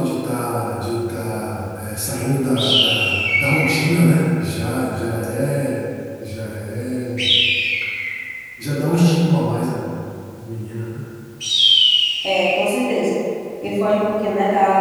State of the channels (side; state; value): both; identical; correlation 1.00